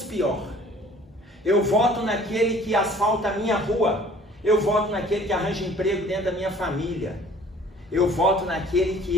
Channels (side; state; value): both; normal; correlation 0.52